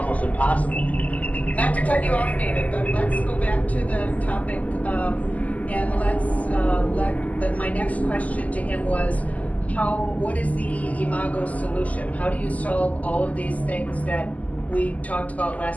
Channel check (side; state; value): right; late; 0.074 ms